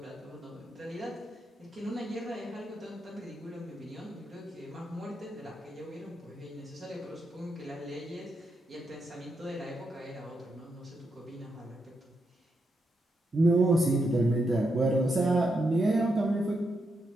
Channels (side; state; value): both; normal; correlation 0.82